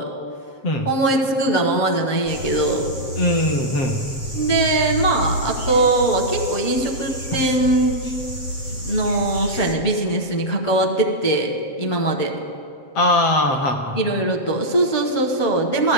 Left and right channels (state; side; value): late; right; 7.5 ms